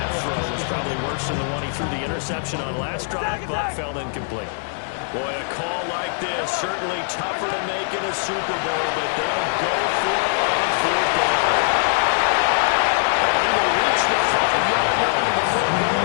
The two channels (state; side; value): silent; right; 64 dB below the other